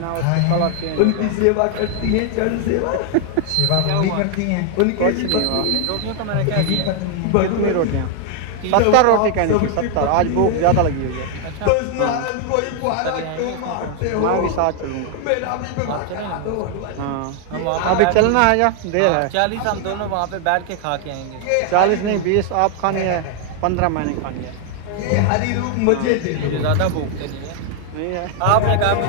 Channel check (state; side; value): different; both; correlation 0.00